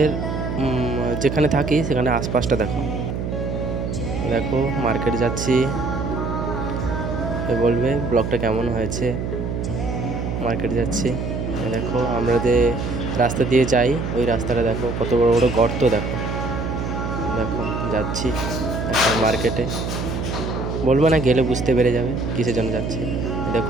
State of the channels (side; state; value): right; noise; hum, 3 dB below the sound